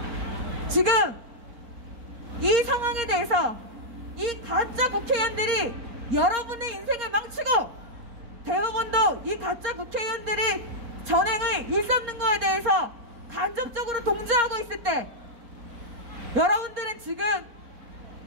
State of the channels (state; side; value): late; left; 4.3 ms